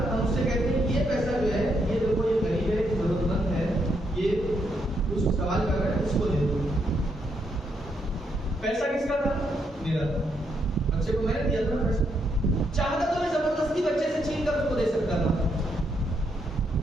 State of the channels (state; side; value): normal; both; correlation 0.77